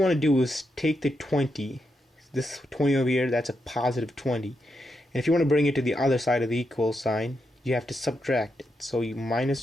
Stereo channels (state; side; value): normal; both; correlation 0.84